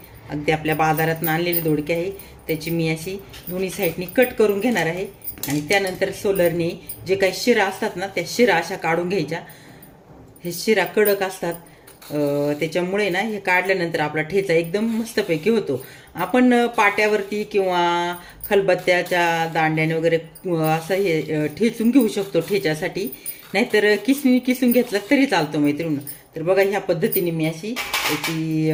अगदी आपल्या बाजारात आणलेले दोडके आहे. त्याची मी अशी दोन्ही साईडनी कट करून घेणार आहे आणि त्यानंतर सोलरने जे काही शिरा असतात ना, त्या शिरा अशा काढून घ्यायच्या. हे शिरा कडक असतात, त्याच्यामुळे ना हे काढल्यानंतर आपला ठेचा एकदम मस्तपैकी होतो. आपण पाट्यावरती किंवा खलबत्त्याच्या दांड्याने वगैरे असं हे ठेचून घेऊ शकतो ठेच्यासाठी, नाहीतर किसणी किसून घेतला तरी चालतो मैत्रिणी. तर बघा, ह्या पद्धतीने मी अशी याची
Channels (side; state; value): both; identical; correlation 1.00